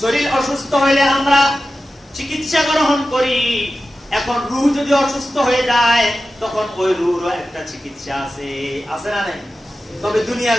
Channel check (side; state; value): both; normal; correlation 0.93